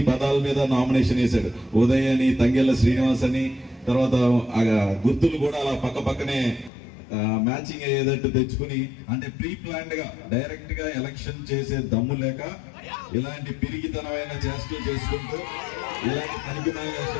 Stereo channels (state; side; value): drops out; right; at 6.7 s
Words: పదాల మీద నామినేషన్ వేశాడు. ఉదయ్ అని, తంగెళ్ల శ్రీనివాస్ అని, తర్వాత గుర్తులు కూడా అలా పక్కనే మ్యాచింగ్ అయ్యేటట్టు తెచ్చుకుని, అంటే ప్రీ ప్లాన్డ్ గా డైరెక్ట్ గా ఎలక్షన్ చేసే దమ్ము లేక ఇలాంటి పిరిగితనమైన చేష్టలు చేసుకుంటూ, ఇలాంటి తనిఖీమైన